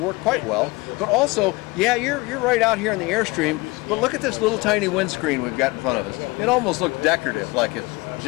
quite well. But also, yeah, you're right out here in the Airstream, but look at this little tiny windscreen we've got in front of us. It almost looks decorative, like it's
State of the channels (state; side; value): quieter; right; 23.5 dB